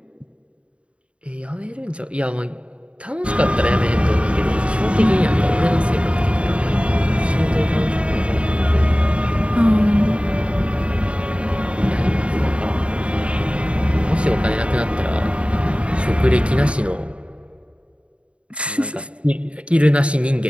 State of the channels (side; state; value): left; late; 0.060 ms